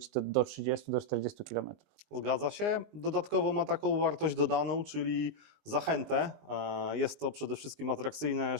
to do 30-40 km. Zgadza się. Dodatkowo ma taką wartość dodaną, czyli zachętę. Jest to przede wszystkim atrakcyjne,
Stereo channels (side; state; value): left; late; 19 ms